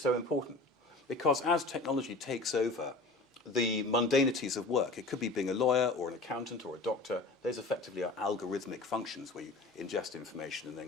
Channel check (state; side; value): quieter; right; 3.2 dB